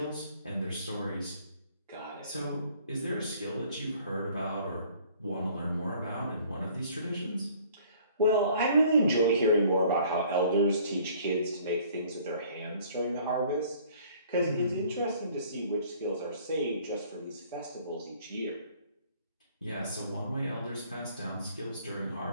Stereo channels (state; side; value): inverted; both; correlation -0.56